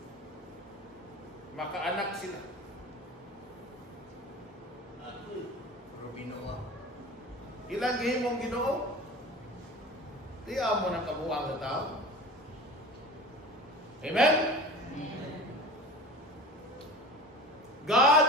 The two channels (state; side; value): normal; both; correlation 0.37